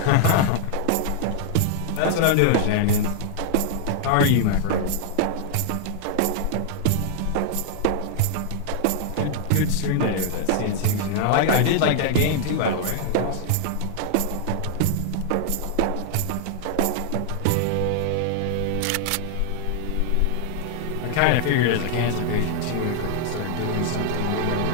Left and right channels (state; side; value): different; both; correlation 0.00